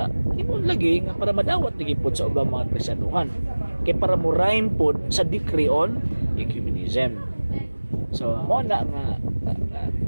imong lagi nga para madawat lagi pod sa ubang mga Kristiyanuhan. Kay para mo rhyme pod sa decree on ecumenism. So mo na nga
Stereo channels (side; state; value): both; inverted; correlation -1.00